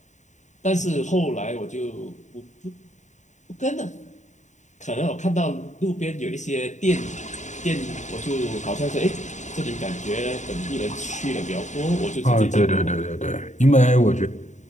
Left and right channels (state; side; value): late; right; 0.34 ms